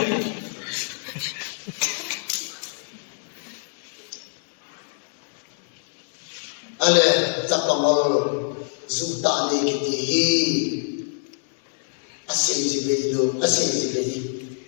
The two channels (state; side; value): silent; right; digital silence